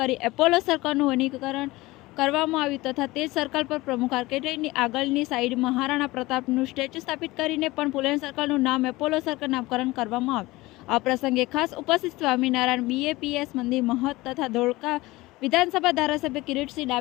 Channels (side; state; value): right; quieter; 20.2 dB